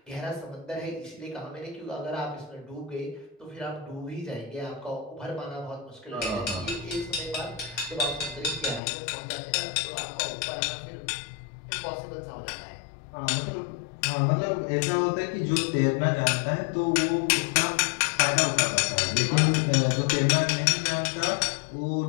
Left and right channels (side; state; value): right; drops out; at 8.8 s